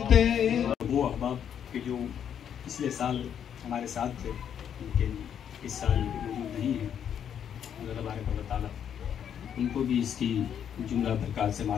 वो अहबाब के जो पिछले साल हमारे साथ थे, लेकिन इस साल मौजूद नहीं है, अल्लाह तबारक व तआला उनको भी इसकी जुमला बरकत से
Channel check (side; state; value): right; quieter; 8.8 dB